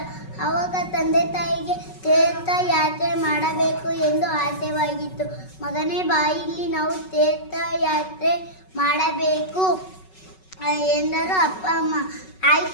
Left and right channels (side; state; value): right; late; 5.3 ms